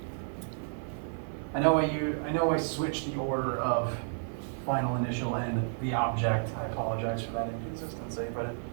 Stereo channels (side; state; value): left; silent; 56 dB below the other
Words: I know I switched the order of final initial and the object. I apologize for that inconsistency, but